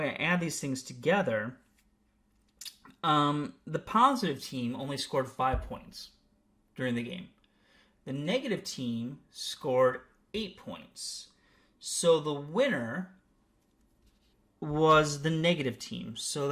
add these things together, the positive team only scored 5 points during the game. The negative team scored 8 points. So the winner was the negative team. So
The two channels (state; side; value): identical; both; correlation 1.00